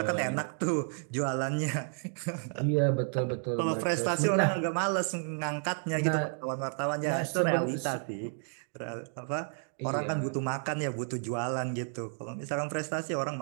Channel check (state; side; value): silent; left; 57 dB below the other